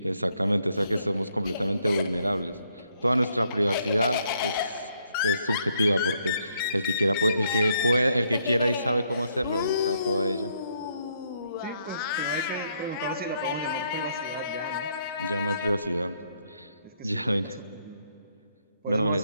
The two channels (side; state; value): both; inverted; correlation -0.73